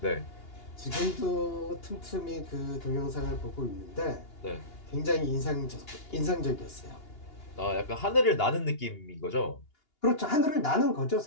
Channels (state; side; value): late; right; 2.8 ms